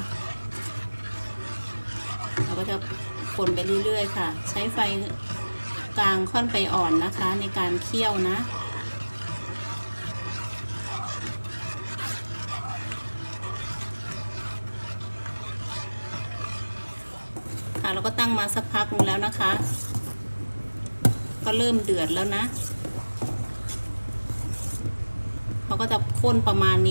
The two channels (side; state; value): both; inverted; correlation -1.00